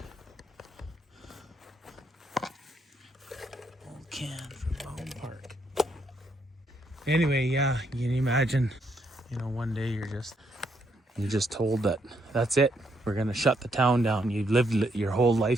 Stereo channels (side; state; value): both; normal; correlation 0.75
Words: Old can from Home Park. Anyway, yeah, you can imagine, one day you're just told that that's it. We're going to shut the town down. You've lived your whole